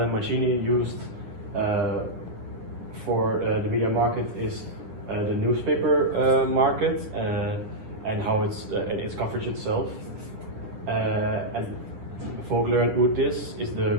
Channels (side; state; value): left; late; 10 ms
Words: Mancini used for the media market is the newspaper market and how its coverage itself. And Vogler and Udis is the